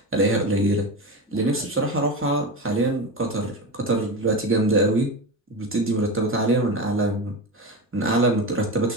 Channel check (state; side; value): normal; both; correlation 0.22